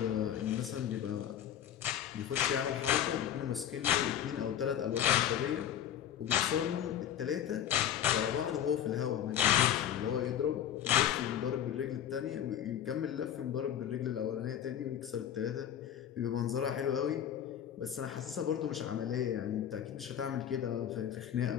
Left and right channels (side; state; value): right; quieter; 10.1 dB